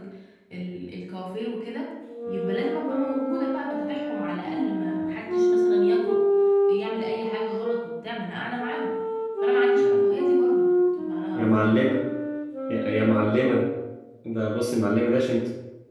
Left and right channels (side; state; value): both; identical; correlation 1.00